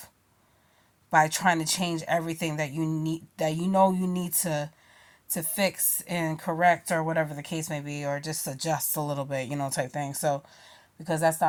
by trying to change everything that you need to fix and correct, or whatever the case may be, or just adjust a little bit, type thing. So, because that's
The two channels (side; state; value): both; identical; correlation 1.00